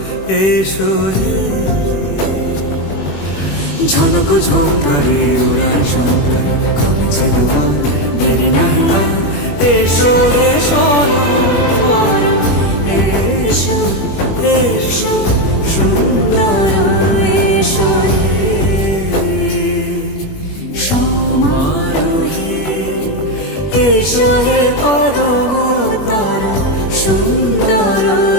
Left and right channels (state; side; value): late; right; 21 ms